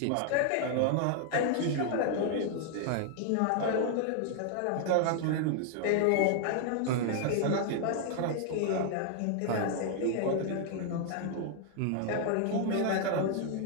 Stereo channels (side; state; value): both; different; correlation 0.00